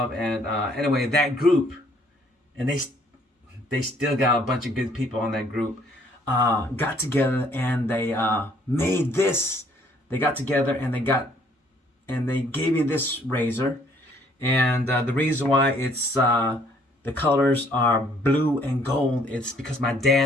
and anyway, that group, and they still got a bunch of good people on that group, got together, and they made this. They got together, and they gave me this razor, and the reason why it's the colors are blue and gold, it's because my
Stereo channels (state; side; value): normal; both; correlation 0.63